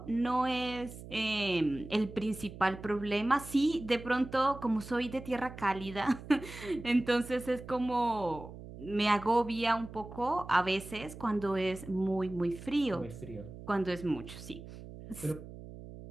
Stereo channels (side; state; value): right; noise; hum, 14 dB below the sound